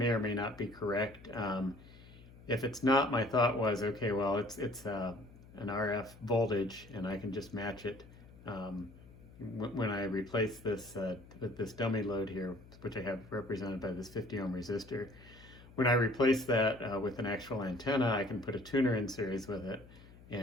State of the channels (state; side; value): noise; left; hum, 21 dB below the sound